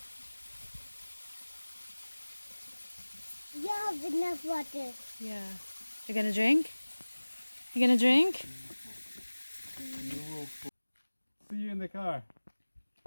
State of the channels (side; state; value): both; inverted; correlation -1.00